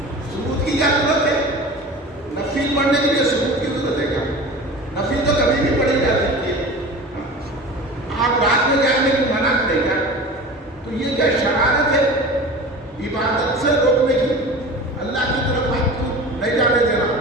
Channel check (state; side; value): normal; both; correlation 0.36